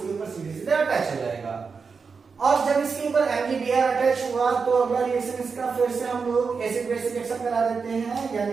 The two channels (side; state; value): left; quieter; 5.2 dB